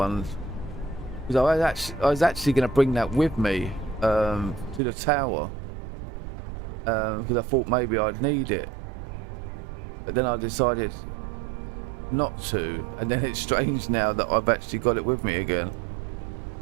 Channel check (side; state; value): left; drops out; at 4.8 s